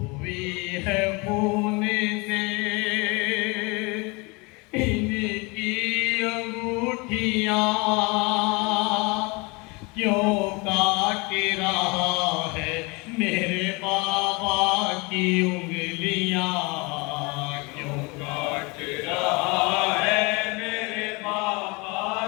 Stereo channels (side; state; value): right; quieter; 27.7 dB